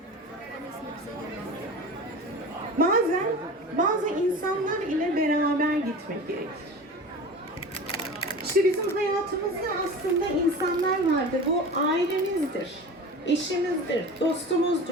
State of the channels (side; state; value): both; normal; correlation 0.34